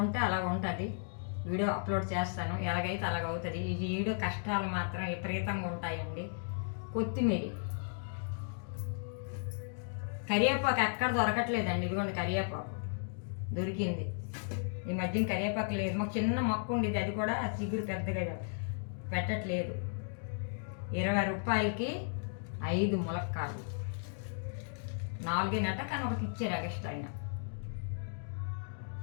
అలాగ ఉంటుంది. వీడియో అప్లోడ్ చేస్తాను, ఎలాగైతే అలాగవుతుంది. ఈ వీడియో కష్టాలు మాత్రం విపరీతంగా ఉంటాయండి. కొత్తిమీర, కరివేపాకు ఎక్కడ దొరకట్లేదండి. ఇదిగోండి కరివేపాకు దొరికింది. ఈ మధ్యన కరివేపాకు లేదు. మాకు చిన్న మొక్క ఉండేది, అది కూడా చిగురు పెద్దగా పెట్టట్లేదు. 20 రూపాయలకి 5 ములక్కాడలు, 4 కానీ ఒకటి ఇచ్చారు ఎక్స్ట్రా అయినా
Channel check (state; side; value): silent; right; digital silence